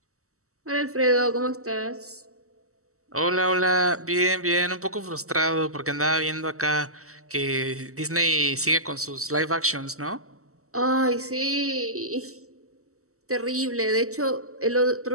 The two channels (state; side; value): late; left; 0.64 ms